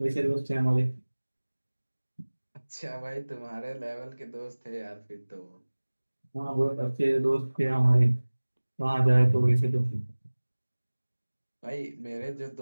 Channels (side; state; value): both; inverted; correlation -1.00